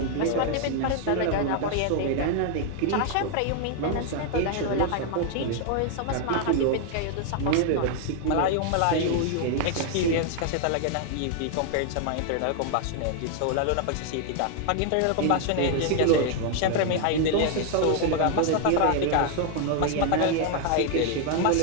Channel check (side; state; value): both; different; correlation 0.00